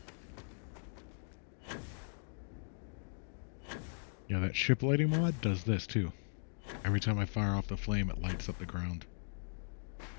Yeah, that ship lighting mod does this too. Every time I fire off the flame, it lights up the ground.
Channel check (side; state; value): right; silent; digital silence